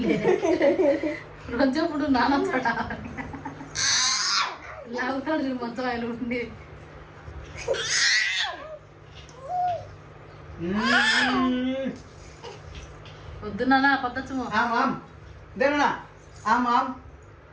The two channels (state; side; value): identical; both; correlation 1.00